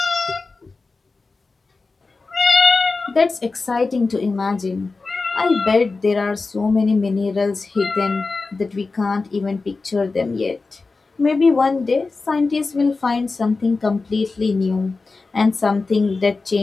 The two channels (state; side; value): quieter; right; 3.9 dB